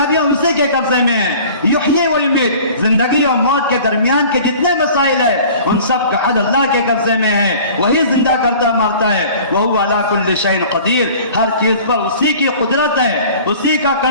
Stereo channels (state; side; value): inverted; both; correlation -0.45